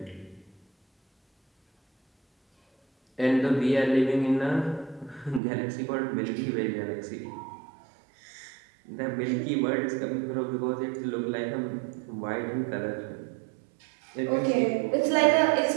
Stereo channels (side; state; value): left; drops out; at 5.4 s